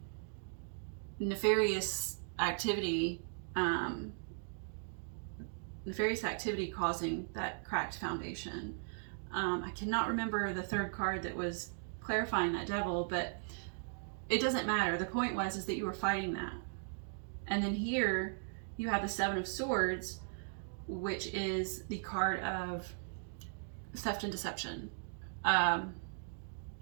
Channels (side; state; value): left; silent; digital silence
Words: nefarious activity causing that cracked foundation. I cannot remember the third card that was clarifying that devil, but it doesn't matter. The point is that you were fighting that. And then here you have the Seven of Swords, which is the card of theft and deception. And